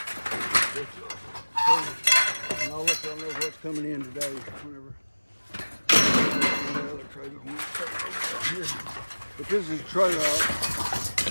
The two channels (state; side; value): inverted; both; correlation -1.00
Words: And I'll let y'all know what's coming in today. Whenever the other trailer won't start over here. But this is a trailer out